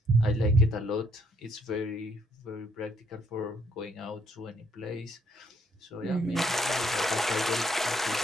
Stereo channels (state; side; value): normal; both; correlation 0.69